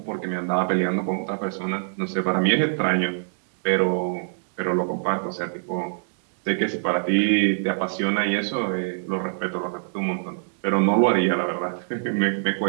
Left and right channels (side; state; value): left; silent; digital silence